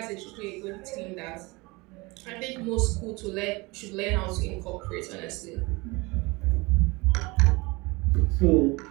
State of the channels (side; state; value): left; quieter; 24.5 dB